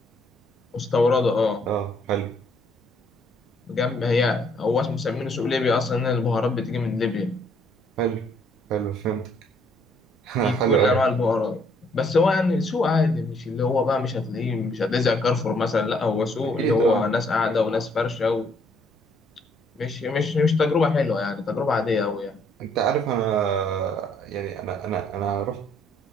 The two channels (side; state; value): both; normal; correlation 0.67